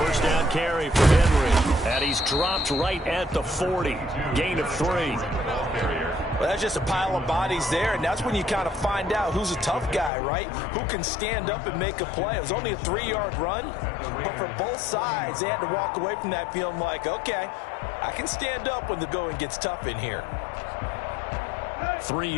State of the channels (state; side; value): drops out; right; at 10.1 s